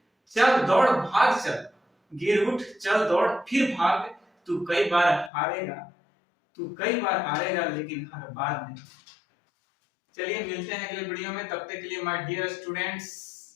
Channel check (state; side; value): drops out; right; at 5.3 s